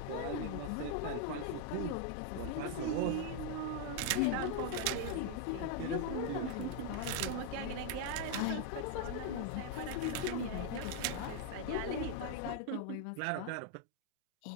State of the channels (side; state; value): both; different; correlation 0.00